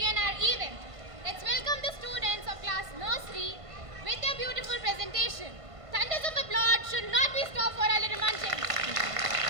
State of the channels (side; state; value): left; late; 1.5 ms